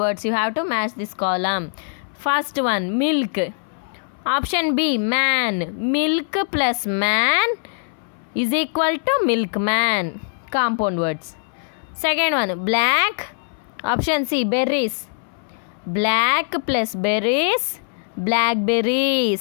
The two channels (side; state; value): right; silent; 64 dB below the other